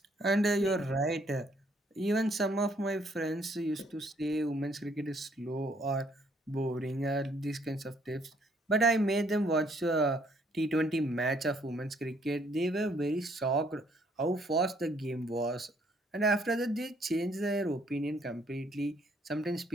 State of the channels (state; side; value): normal; both; correlation 0.66